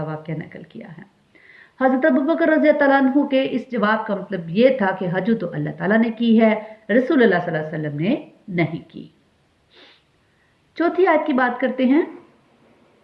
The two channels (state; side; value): identical; both; correlation 1.00